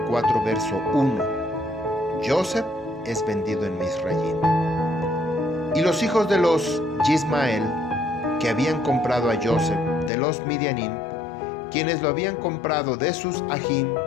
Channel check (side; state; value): right; drops out; at 10.1 s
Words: verso 1. Joseph es vendido en Misraim. Y los hijos de los Yismael, que habían comprado a Joseph de los Midianim, quienes lo habían comprado de sus ajim,